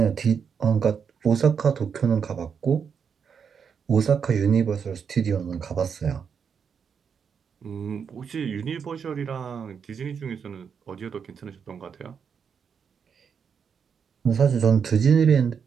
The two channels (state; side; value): quieter; left; 6.7 dB